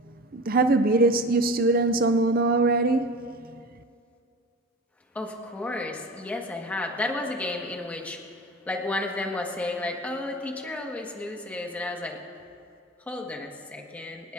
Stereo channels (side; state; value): both; normal; correlation 0.34